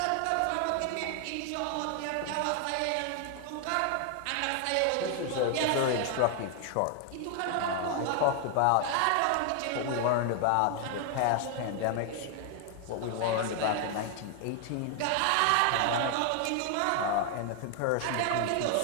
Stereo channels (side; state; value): both; different; correlation 0.00